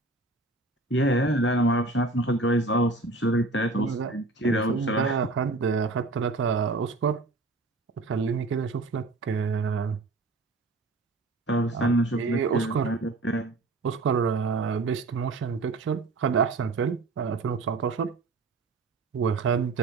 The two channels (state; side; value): quieter; left; 3.3 dB